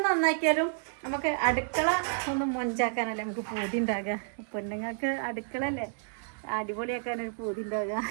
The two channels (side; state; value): left; silent; digital silence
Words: നന്നാക്കിയാലും നമുക്ക് അടുക്കള ഒന്ന് മൊഞ്ചാക്കാനല്ലേ നമുക്ക് പൂതി ഉണ്ടാകുക. പെണ്ണുങ്ങൾക്ക് അടുക്കളല്ലേ അടിപൊളിയാക്കാനൊരു പൂതി ഉണ്ടാകുക.